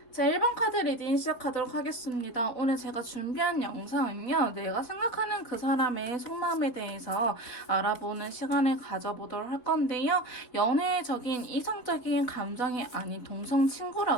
자, 1번 카드 리딩 시작하도록 하겠습니다. 오늘 제가 준비한 영상은요, 내가 생각하는 그 사람의 속마음에 대해서 알아보는 시간을 가져보도록 할 건데요. 연애적인 이성적인 감정이 아닌 동성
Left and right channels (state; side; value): late; right; 4.7 ms